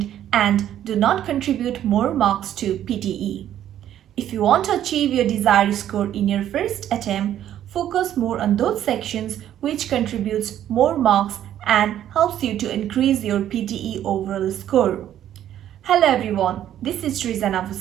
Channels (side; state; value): left; quieter; 11.2 dB